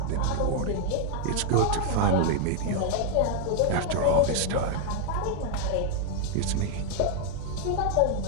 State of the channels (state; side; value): different; both; correlation 0.00